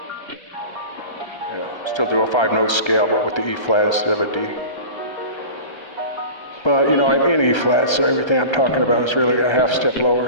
Yeah, still do a 5-note scale, but with the E flat instead of a D. But, you know, I'm in E flat, so everything I'm talking about is really a half step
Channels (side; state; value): right; late; 1.3 ms